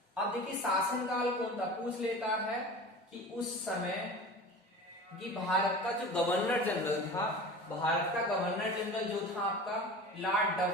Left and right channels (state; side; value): normal; both; correlation 0.35